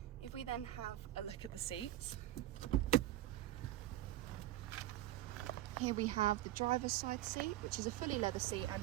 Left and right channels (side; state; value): left; quieter; 14.6 dB